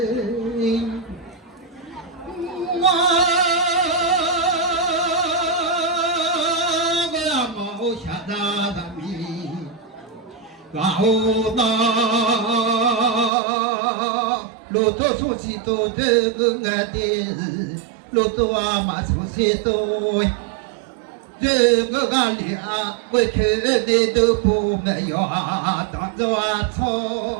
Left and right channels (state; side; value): drops out; left; at 13.3 s